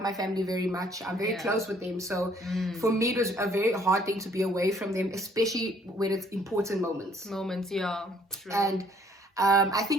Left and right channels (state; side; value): normal; both; correlation 0.62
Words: my family very much. I'm very close with them, so for me it was a very hard thing to be away from them, especially when it's important moments. Yeah, true. And I